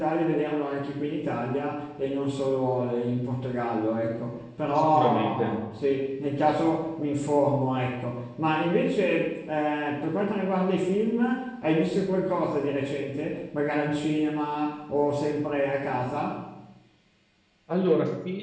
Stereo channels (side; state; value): both; identical; correlation 1.00